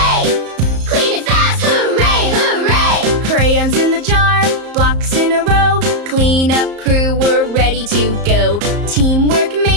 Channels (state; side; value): late; left; 34 ms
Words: Clean it fast, hooray, hooray. Crayons in the jar, blocks in a row. Cleanup crew, we're ready to go. Teamwork